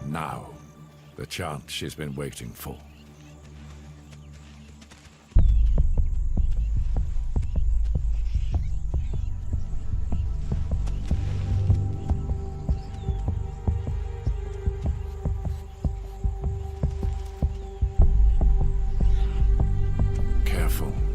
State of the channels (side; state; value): both; identical; correlation 1.00